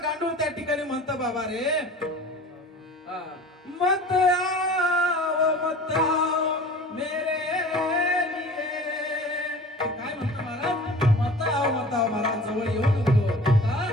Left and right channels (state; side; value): normal; both; correlation 0.41